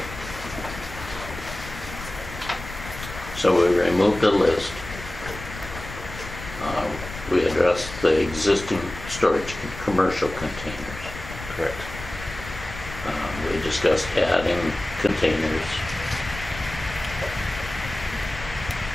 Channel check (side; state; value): left; noise; rumble, 12 dB below the sound